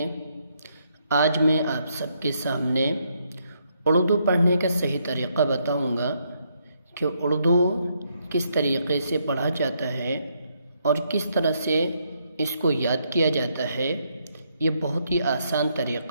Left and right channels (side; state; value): both; inverted; correlation -0.75